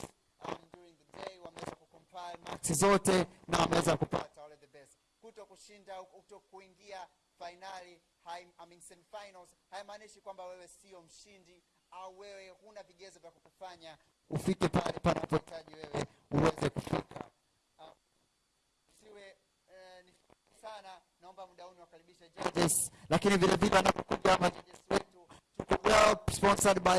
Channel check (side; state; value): both; identical; correlation 1.00